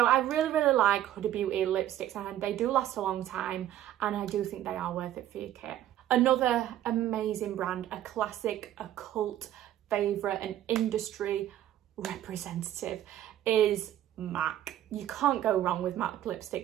I really like Huda Beauty lipsticks, and they do last a long time, and I do think they are worth it for your kit. Another amazing brand, a classic, a cult favourite, an industry representative is MAC. You can't go wrong with MAC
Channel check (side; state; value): left; quieter; 12.3 dB